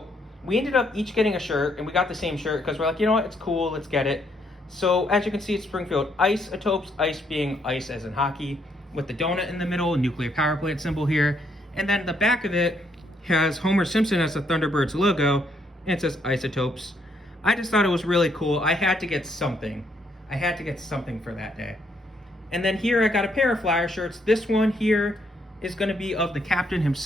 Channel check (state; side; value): normal; both; correlation 0.72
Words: we ended up each getting a shirt, and we got the same shirt because we're like, you know what, it's cool, let's get it. So as you can see, it's Springfield Isotopes, ice being ice as in hockey, with the donut in the middle, nuclear power plant symbol here. And then the back of it has Homer Simpson as the Thunderbirds logo, and it says Isotopes. I just thought it was really cool. I had to get something. I had to get something for that day. And then here I got a pair of Flyer shirts. This one here is going to be of the captain